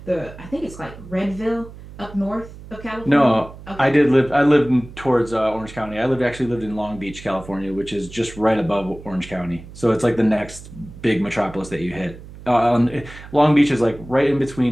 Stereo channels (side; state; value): right; noise; hum, 16 dB below the sound